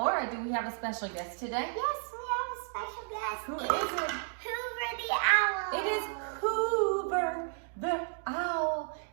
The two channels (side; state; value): left; silent; 56 dB below the other